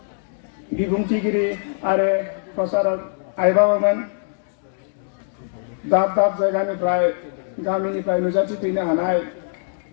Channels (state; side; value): silent; right; digital silence